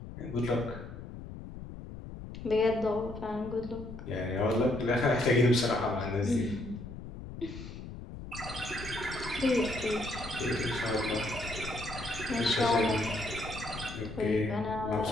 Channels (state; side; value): noise; left; rumble, 11 dB below the sound